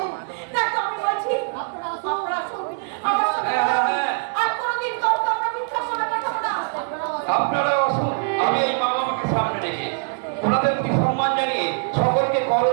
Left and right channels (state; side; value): silent; left; digital silence